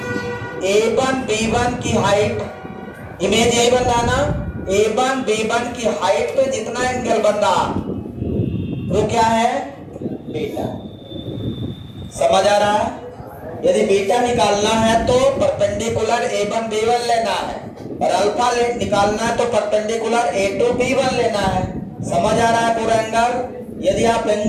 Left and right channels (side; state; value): both; identical; correlation 1.00